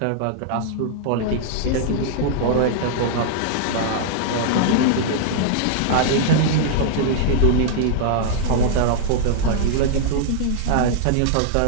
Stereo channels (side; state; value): both; different; correlation -0.01